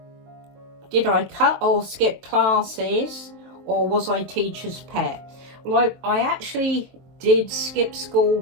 did I cut or skip classes, or was I teacher's pet? Well, I actually did skip school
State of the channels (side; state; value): left; late; 23 ms